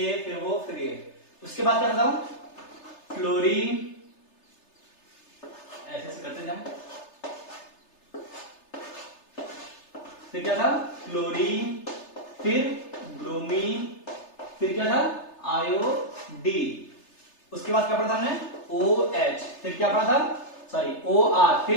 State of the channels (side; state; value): right; late; 3.3 ms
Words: फिर वो फिर ये। उसके बाद क्या था फ्लोरीन, ऐसे करते जाए, फिर क्या था फ्लोरीन, फिर ब्रोमीन, फिर क्या था आयोडीन। उसके बाद क्या पढ़ा था हमने OH, फिर क्या पढ़ा था सॉरी OR,